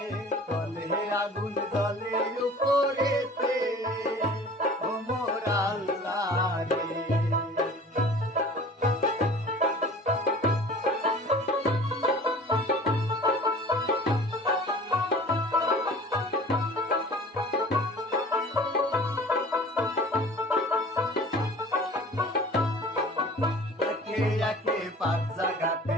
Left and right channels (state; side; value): normal; both; correlation 0.44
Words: তলে আগুন জ্বলে উপরেতে ও মোর আল্লাহ রে। পাঁচ জায়গাতে